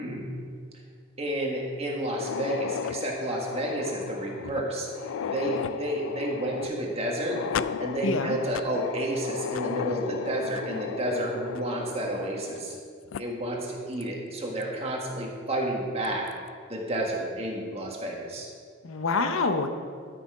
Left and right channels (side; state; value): both; normal; correlation 0.17